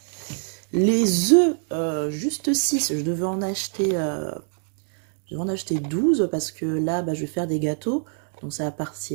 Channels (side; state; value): left; silent; digital silence